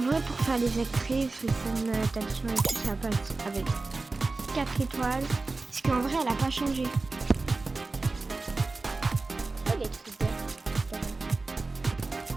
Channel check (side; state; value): left; quieter; 3.6 dB